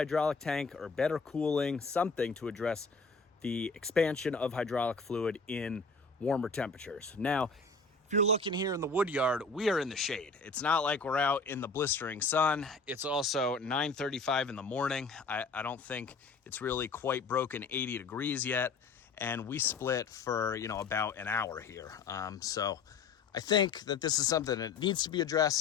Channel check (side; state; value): right; quieter; 4.3 dB